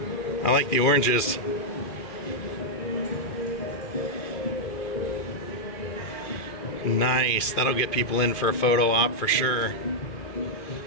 I like the oranges. Nice. That'll get people in for a photo op for sure.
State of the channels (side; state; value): right; late; 2.5 ms